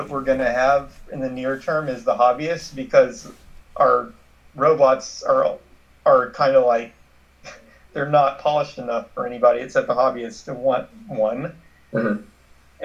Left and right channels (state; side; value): identical; both; correlation 1.00